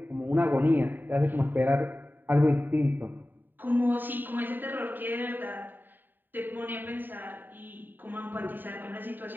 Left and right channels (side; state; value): left; late; 0.091 ms